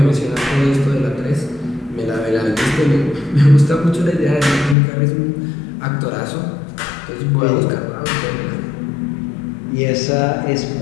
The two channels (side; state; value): right; drops out; at 4.8 s